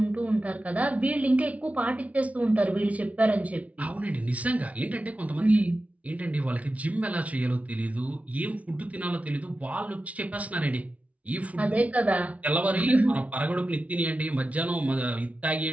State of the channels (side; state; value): left; late; 0.067 ms